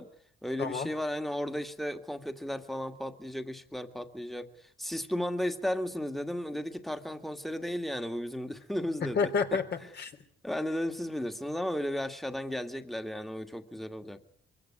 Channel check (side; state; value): both; normal; correlation 0.81